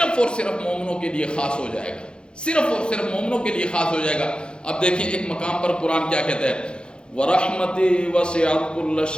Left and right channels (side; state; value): right; late; 0.052 ms